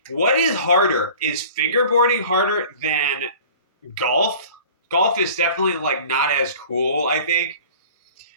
what is harder? Is fingerboarding harder than golf? Golf is definitely like not as cool, I think.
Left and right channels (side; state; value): both; inverted; correlation -0.44